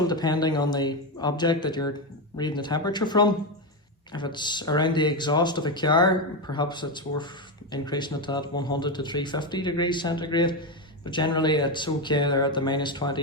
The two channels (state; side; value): normal; both; correlation 0.11